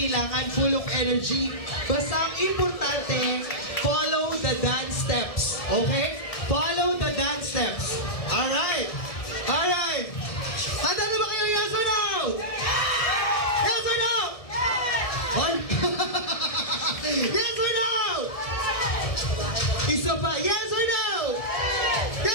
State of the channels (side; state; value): right; late; 1.7 ms